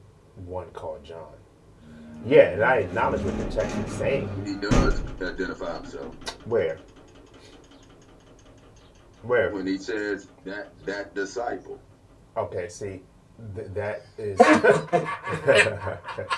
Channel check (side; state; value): both; identical; correlation 1.00